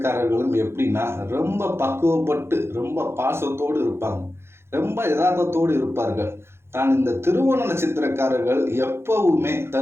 எப்படின்னா ரொம்ப பக்குவப்பட்டு ரொம்ப பாசத்தோடு இருப்பாங்க, ரொம்ப யதார்த்தத்தோடு இருப்பார்கள். தான் இந்த திருவோண நட்சத்திரக்காரர்கள் எப்பவுமே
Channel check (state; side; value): late; left; 0.12 ms